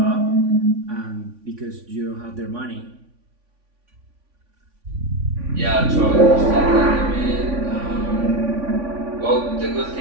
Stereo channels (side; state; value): left; late; 3.5 ms